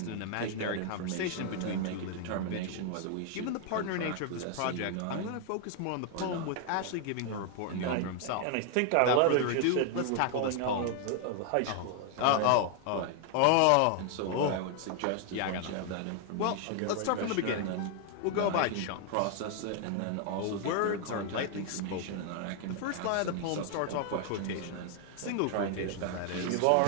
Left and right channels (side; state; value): both; different; correlation 0.00